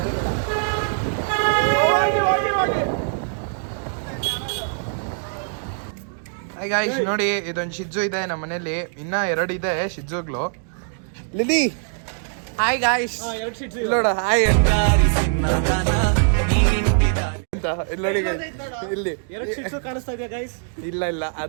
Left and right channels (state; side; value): silent; left; digital silence